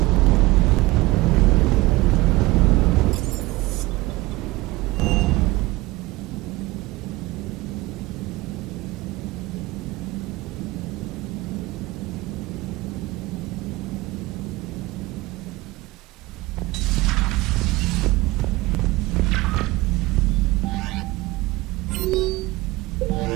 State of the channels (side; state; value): left; quieter; 20.1 dB